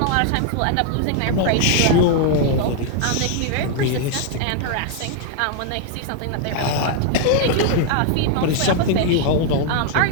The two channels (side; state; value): both; different; correlation 0.00